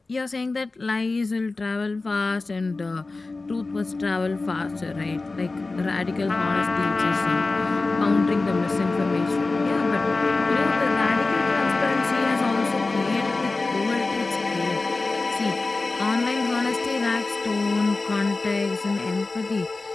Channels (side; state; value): right; quieter; 3.5 dB